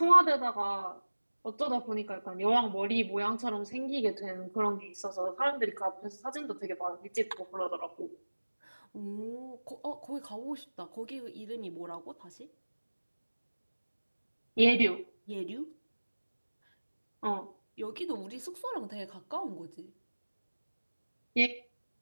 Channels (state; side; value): inverted; both; correlation -1.00